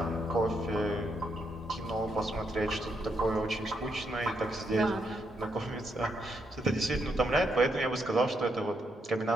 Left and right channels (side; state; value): both; normal; correlation 0.78